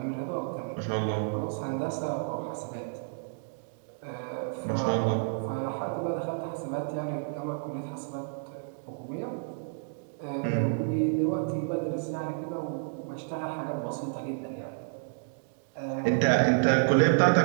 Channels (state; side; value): silent; left; digital silence